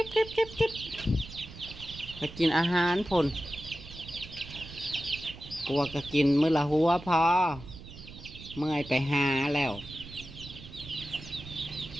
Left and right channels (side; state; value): right; noise; rumble, 15 dB below the sound